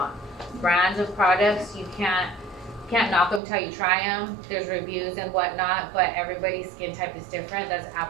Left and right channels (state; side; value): drops out; left; at 3.4 s